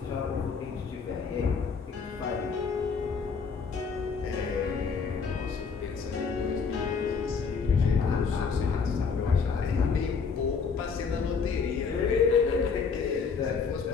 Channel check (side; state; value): right; quieter; 5.5 dB